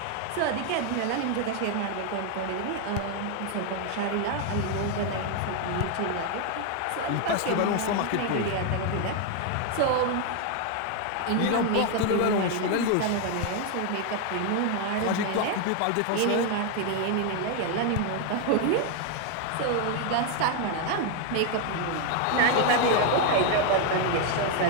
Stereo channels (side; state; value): both; different; correlation 0.01